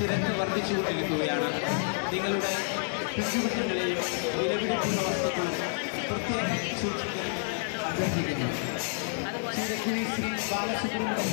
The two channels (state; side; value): silent; right; 58 dB below the other